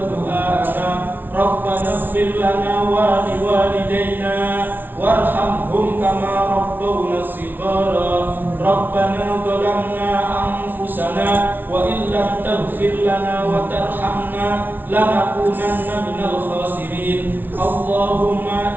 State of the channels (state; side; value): late; left; 0.090 ms